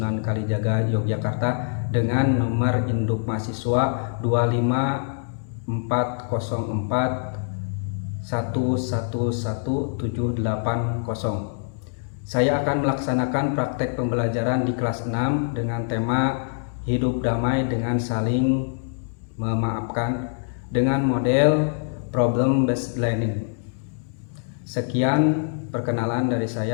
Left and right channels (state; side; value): silent; right; digital silence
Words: Kalijaga, Yogyakarta, dengan nomor induk mahasiswa 25404111780. Saya akan melaksanakan praktek pembelajaran di kelas 6 dengan tema hidup damai dengan saling memaafkan dengan model problem based learning. Sekian perkenalan dari